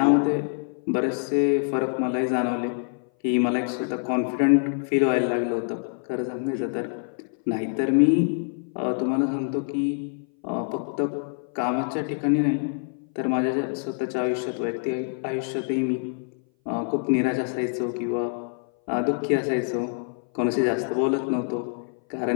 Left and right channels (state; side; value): silent; right; 58 dB below the other